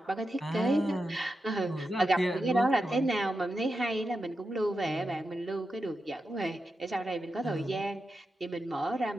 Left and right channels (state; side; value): normal; both; correlation 0.89